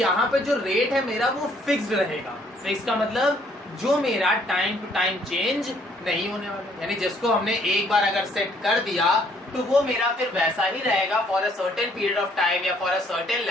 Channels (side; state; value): both; normal; correlation 0.64